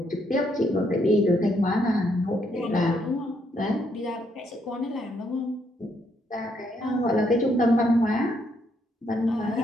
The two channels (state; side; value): normal; both; correlation 0.74